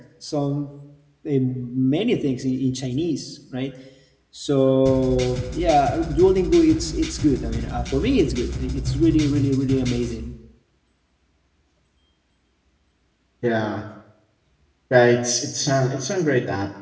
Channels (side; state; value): both; identical; correlation 1.00